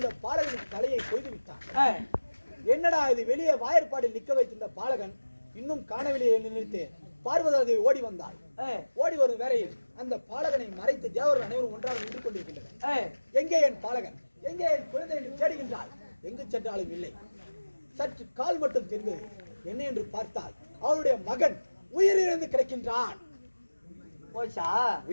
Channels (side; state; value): both; inverted; correlation -1.00